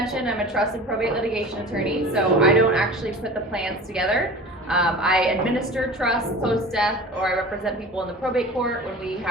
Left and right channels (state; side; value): normal; both; correlation 0.38